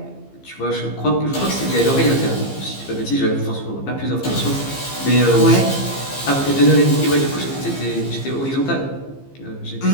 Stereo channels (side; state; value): right; late; 15 ms